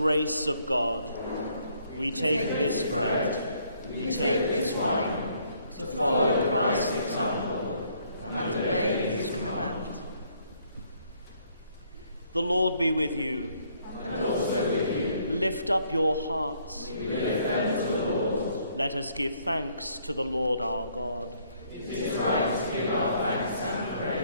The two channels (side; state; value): both; inverted; correlation -0.67